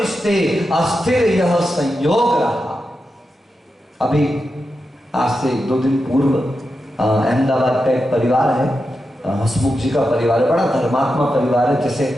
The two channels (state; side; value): normal; both; correlation 0.89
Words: अस्थिर यह संयोग रहा। अभी आज से 2 दिन पूर्व अहमदाबाद का एक परिवार है, हसमुख जी का परिवार है, बड़ा धर्मात्मा परिवार है। जैसे